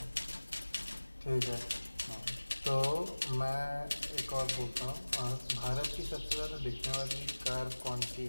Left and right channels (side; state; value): both; inverted; correlation -1.00